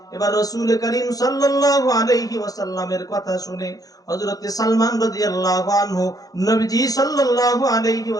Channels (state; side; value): late; right; 0.18 ms